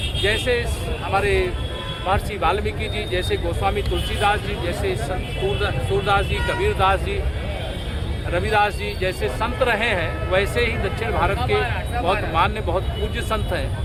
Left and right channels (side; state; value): both; identical; correlation 1.00